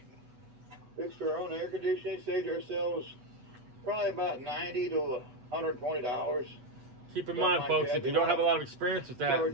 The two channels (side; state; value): left; late; 8.1 ms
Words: Fixed our own air conditioning, saved ourselves probably about $90 to $120. Keep in mind, folks, if you don't have a lot of experience with that,